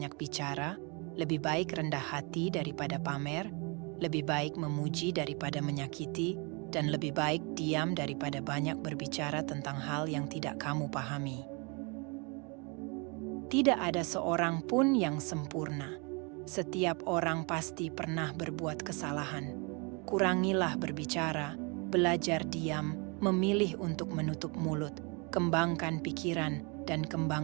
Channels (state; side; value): quieter; left; 31.4 dB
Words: bicara, lebih baik rendah hati daripada pamer, lebih baik memuji daripada menyakiti, dan lebih baik diam daripada banyak berbicara tentang hal yang tidak kamu pahami. Tidak ada seorang pun yang sempurna. Setiap orang pasti pernah berbuat kesalahan. Kurangilah berbicara, belajar diam, memilih untuk menutup mulut, kembangkan pikiran, dan